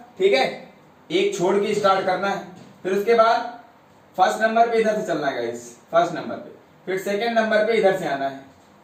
ठीक है, एक छोड़ के स्टार्ट करना है, फिर उसके बाद फर्स्ट नंबर पे इधर से चलना है गाइस, फर्स्ट नंबर पे, फिर सेकंड नंबर पे इधर से आना है।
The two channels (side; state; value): both; identical; correlation 1.00